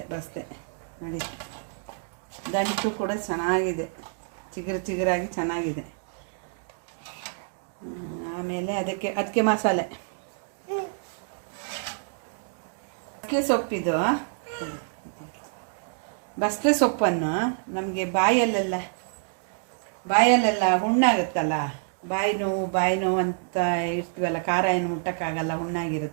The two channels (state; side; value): silent; left; digital silence